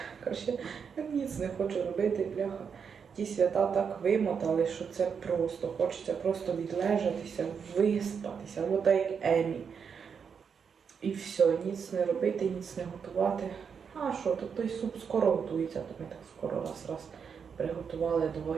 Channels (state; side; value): quieter; left; 6.6 dB